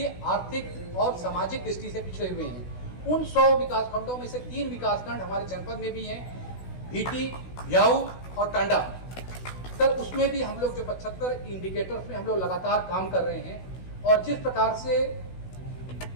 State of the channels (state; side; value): late; right; 16 ms